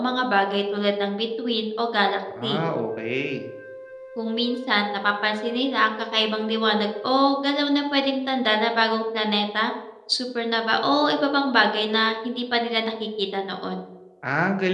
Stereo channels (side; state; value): both; identical; correlation 1.00